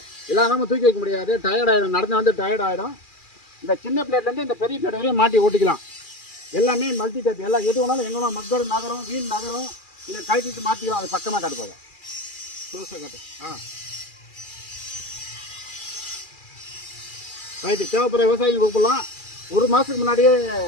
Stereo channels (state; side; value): late; right; 2.4 ms